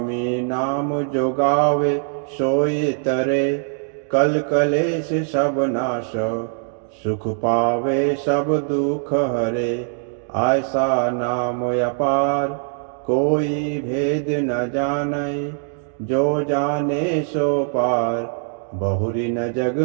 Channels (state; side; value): silent; left; digital silence